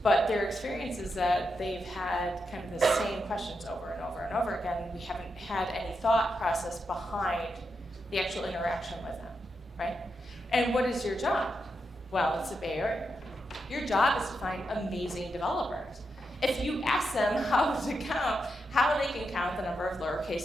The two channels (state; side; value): normal; both; correlation 0.85